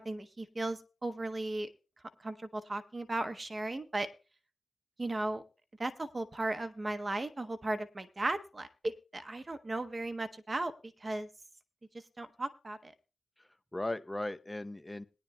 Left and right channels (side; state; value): both; normal; correlation 0.97